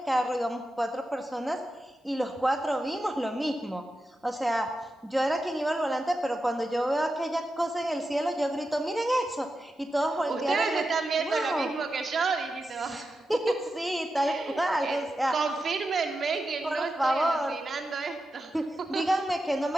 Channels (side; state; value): both; normal; correlation 0.89